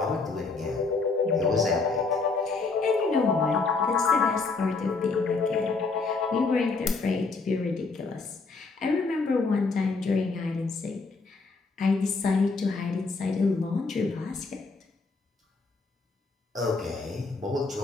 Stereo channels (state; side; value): quieter; right; 4.1 dB